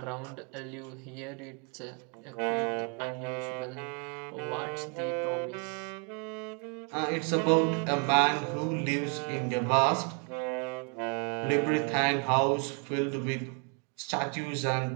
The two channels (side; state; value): left; quieter; 38.5 dB